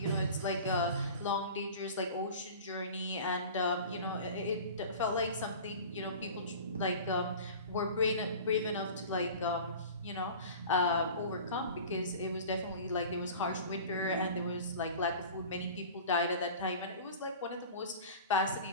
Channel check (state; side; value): inverted; both; correlation -0.39